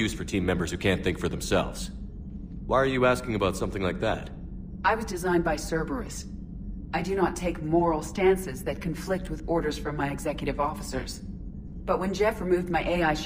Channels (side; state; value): both; identical; correlation 1.00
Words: for team members who can't think for themselves. Why are you asking about something like that? I was designed by Cerberus. I do not take moral stances that conflict with orders from my executive officers. But when Jeff removed my AI